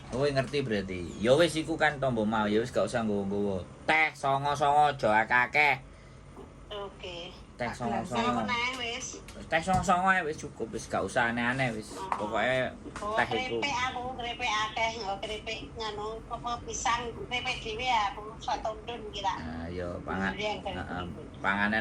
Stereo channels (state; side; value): identical; both; correlation 1.00